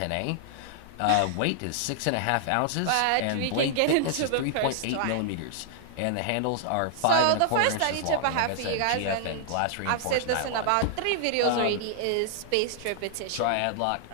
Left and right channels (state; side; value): different; both; correlation -0.01